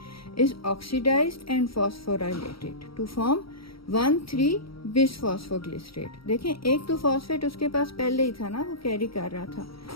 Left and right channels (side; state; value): right; late; 0.75 ms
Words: is oxidized and phosphorylated to form 1,3 bisphosphoglycerate. देखें, एक तो फॉस्फेट उसके पास पहले ही था ना, वो कैरी कर रहा था,